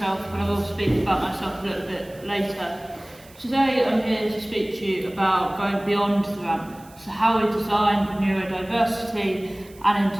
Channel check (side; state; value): right; noise; hiss, 25 dB below the sound